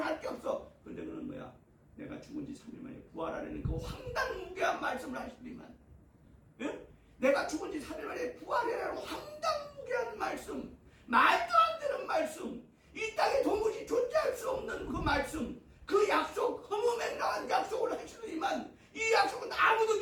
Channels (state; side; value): identical; both; correlation 1.00